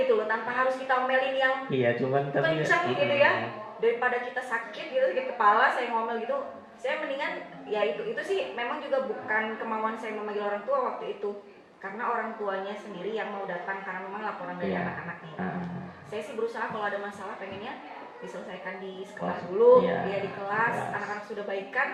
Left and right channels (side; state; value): both; identical; correlation 1.00